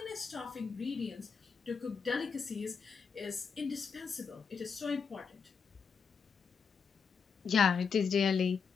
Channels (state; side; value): quieter; right; 5.9 dB